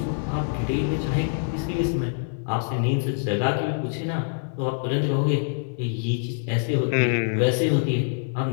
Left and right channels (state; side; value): silent; right; digital silence